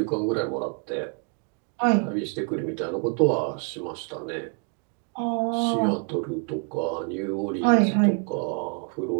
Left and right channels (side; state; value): left; quieter; 36.9 dB